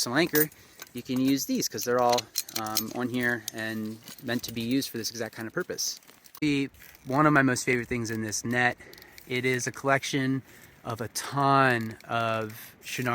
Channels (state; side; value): identical; both; correlation 1.00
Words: anchor, you can use these, because they're all on here and meant to be used for this exact kind of purpose. One of my most favorite things in this net, it is a collection of a ton of